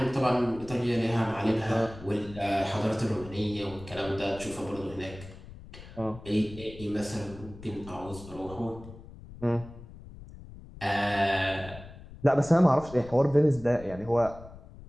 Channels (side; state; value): left; noise; rumble, 16 dB below the sound